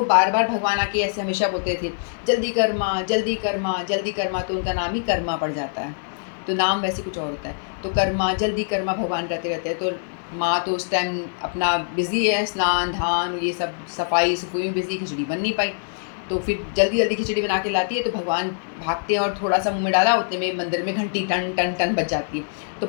बार बार भगवान आके ऐसे हमेशा बोलते थे, जल्दी कर माँ जल्दी कर माँ जल्दी कर माँ। तो उनका नाम ही कर्मा पड़ जाता है, तो नाम वैसे कुछ और होता है। तो कर्मा जल्दी कर्मा भगवान कहते रहते हैं। तो माँ तो उस टाइम अपना बिज़ी है, स्नान धान ये सब सफाई सफाई में बिज़ी, खिचड़ी बन नहीं पाई। तो फिर जल्दी जल्दी खिचड़ी बना के लाती है, तो भगवान भागते हैं और थोड़ा सा मुँह में डाला, उतने में मंदिर में घंटी टन टन टन बज जाती है। तो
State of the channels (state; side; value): silent; right; digital silence